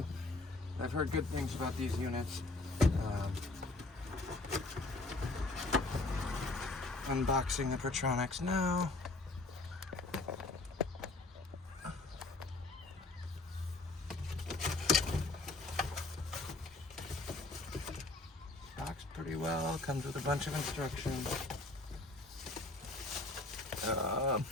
I've heard good things about these units. Unboxing the Pertronix now. Boxed pretty well, comes with a bunch of instructions.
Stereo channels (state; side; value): quieter; right; 3.1 dB